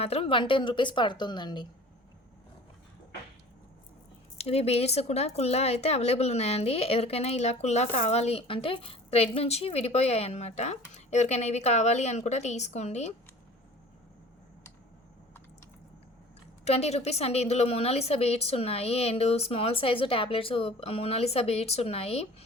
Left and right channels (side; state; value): both; normal; correlation 0.45